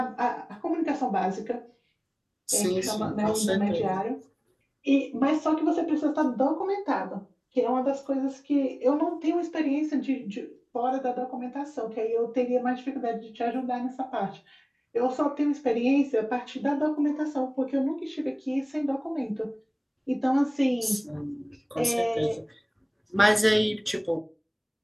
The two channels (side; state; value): both; identical; correlation 1.00